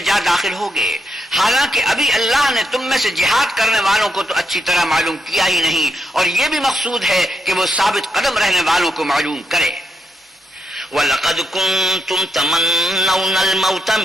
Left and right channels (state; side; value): normal; both; correlation 0.81